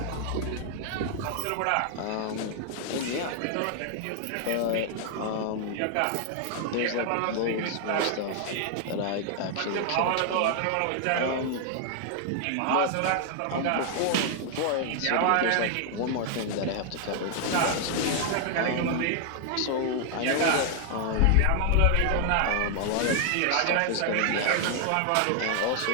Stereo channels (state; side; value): different; both; correlation 0.00